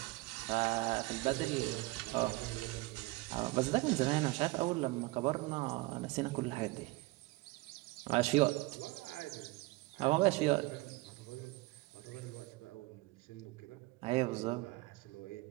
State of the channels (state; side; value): quieter; left; 22.2 dB